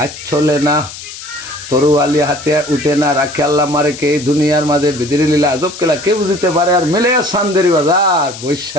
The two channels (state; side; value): noise; left; hiss, 13 dB below the sound